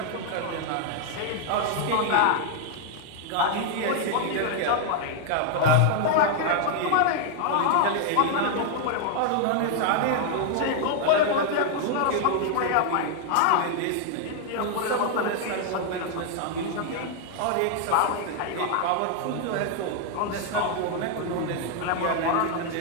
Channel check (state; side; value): different; both; correlation 0.00